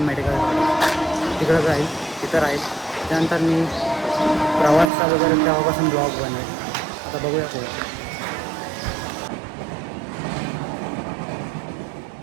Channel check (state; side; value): drops out; left; at 4.9 s